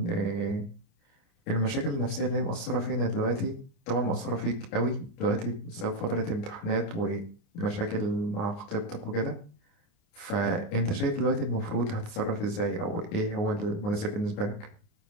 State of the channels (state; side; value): late; right; 29 ms